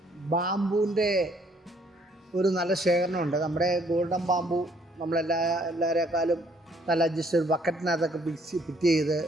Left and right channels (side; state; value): both; normal; correlation 0.64